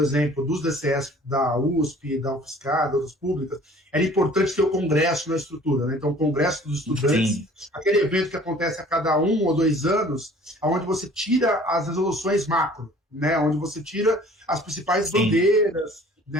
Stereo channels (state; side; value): normal; both; correlation 0.51